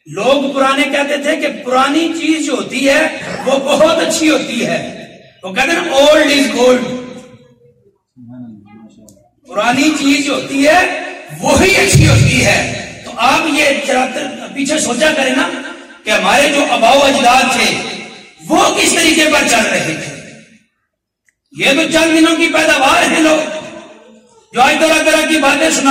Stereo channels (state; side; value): identical; both; correlation 1.00